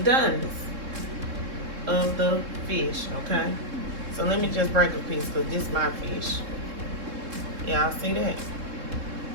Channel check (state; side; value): late; left; 3.7 ms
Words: of the fish, okay? So let me just break a piece because this is my fish. Y'all see that?